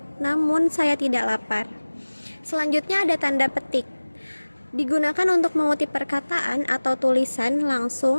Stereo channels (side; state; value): both; inverted; correlation -1.00